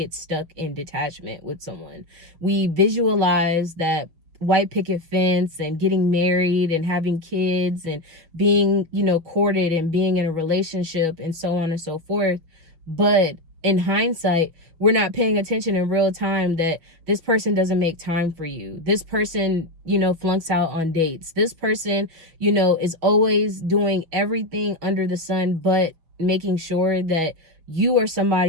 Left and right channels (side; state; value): left; late; 6.3 ms